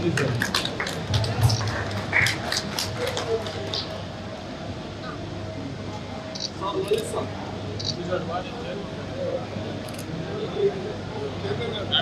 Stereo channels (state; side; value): identical; both; correlation 1.00